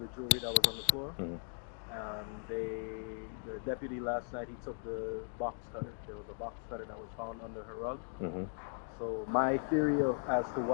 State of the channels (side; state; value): right; silent; 53 dB below the other